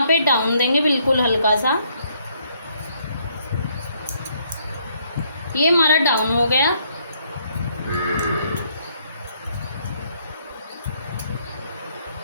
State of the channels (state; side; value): inverted; both; correlation -0.70